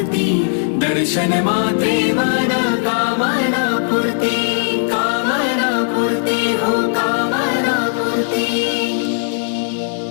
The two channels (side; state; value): right; silent; 63 dB below the other